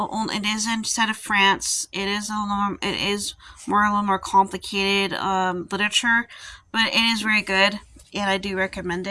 is instead of France. It is a little more complicated literature, but it is very good, and I do recommend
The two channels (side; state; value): both; identical; correlation 1.00